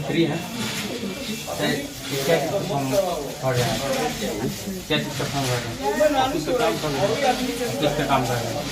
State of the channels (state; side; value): identical; both; correlation 1.00